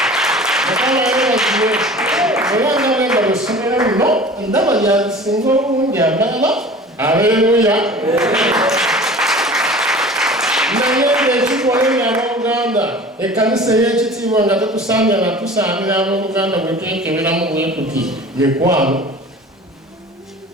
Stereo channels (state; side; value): normal; both; correlation 0.41